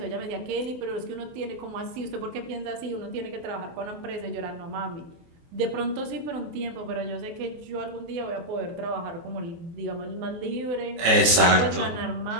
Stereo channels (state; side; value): late; left; 23 ms